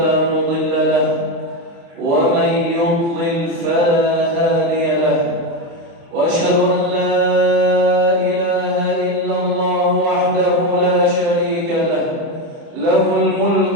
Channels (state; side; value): late; left; 29 ms